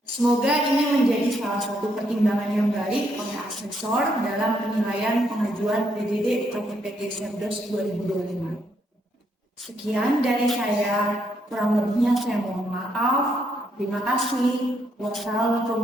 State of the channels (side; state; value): both; normal; correlation 0.75